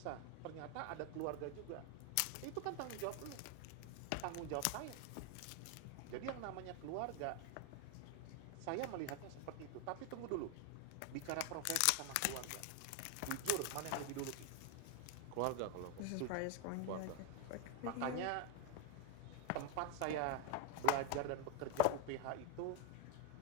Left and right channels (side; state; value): both; different; correlation 0.00